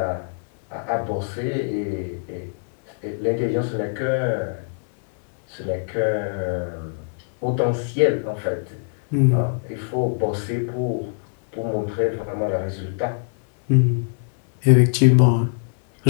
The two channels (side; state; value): right; silent; digital silence